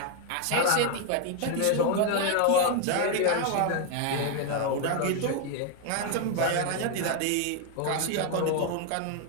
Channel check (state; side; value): different; both; correlation 0.01